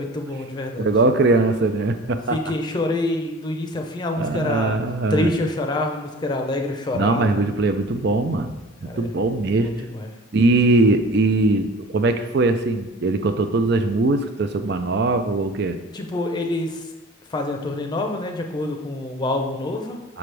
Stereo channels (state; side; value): normal; both; correlation 0.42